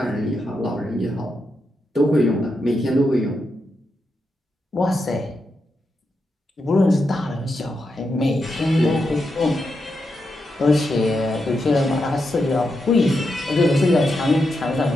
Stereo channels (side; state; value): both; normal; correlation 0.85